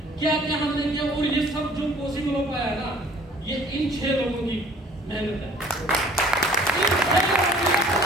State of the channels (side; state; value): both; normal; correlation 0.53